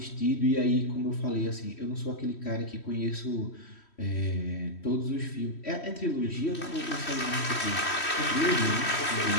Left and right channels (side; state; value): right; late; 3.1 ms